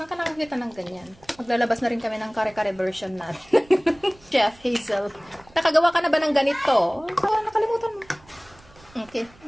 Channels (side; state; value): right; noise; rumble, 27 dB below the sound